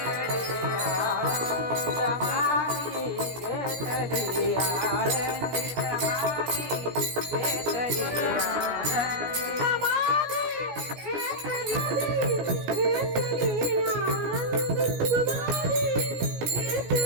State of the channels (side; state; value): left; late; 17 ms